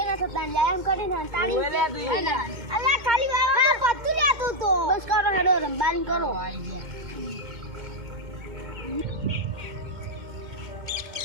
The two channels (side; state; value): left; late; 2.1 ms